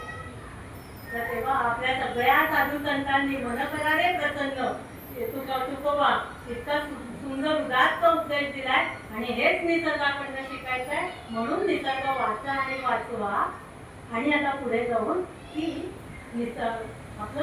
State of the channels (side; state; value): both; identical; correlation 1.00